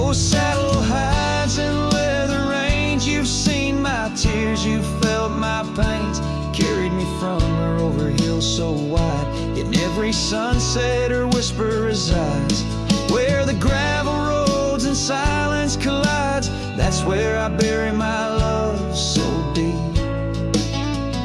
saddle hides and leather reins, you've seen my tears, you've felt my pains. Carried me from her over hills so wide. In every sunset her whisper resides. Where the gravel roads and silence collides, that's where I bury my love so deep.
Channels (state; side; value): identical; both; correlation 1.00